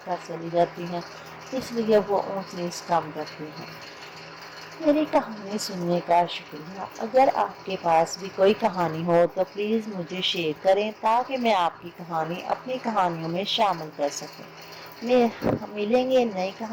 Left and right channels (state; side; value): identical; both; correlation 1.00